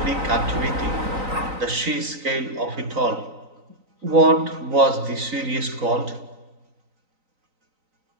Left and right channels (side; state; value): left; late; 3.9 ms